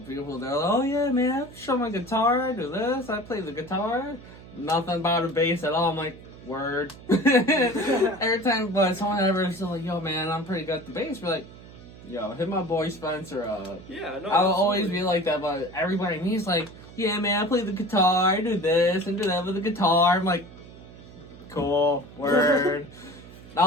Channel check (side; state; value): right; noise; hum, 18 dB below the sound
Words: people. They're like, "Oh yeah, man, I show my guitar. I do this. I play the guitar. Nothing about a bass at all." I'm like, "Word." Every time, but someone ever is like, "Yo, man, I'm pretty good at the bass." We're like, "Yo, hit my boy Spencer up." Yeah, no. I'll always absolutely. be like that, but everybody to me is like, "Yeah, man, I play the guitar. I do this and do that with the guitar." I'm like, "Cool, word."